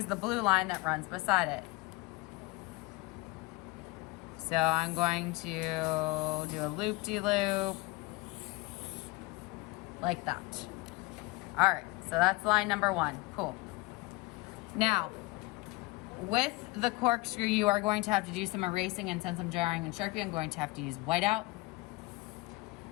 the blue line that runs beside it. So I'm going to do a loop-de-loop like that. All right, so that's line number 1, cool. Now, with the corkscrew, you are going to have to do some erasing, and since I'm drawing in Sharpie, I'm going to have to use whiteout.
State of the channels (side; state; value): right; quieter; 22.6 dB